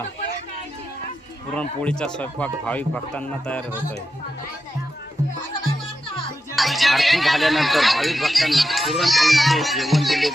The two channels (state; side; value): normal; both; correlation 0.89